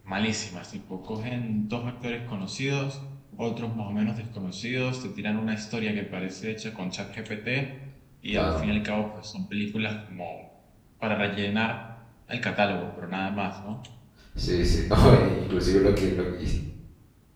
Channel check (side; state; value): both; identical; correlation 1.00